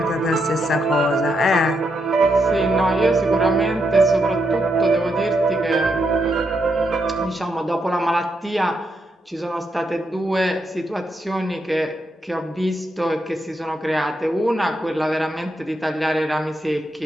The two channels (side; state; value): both; normal; correlation 0.81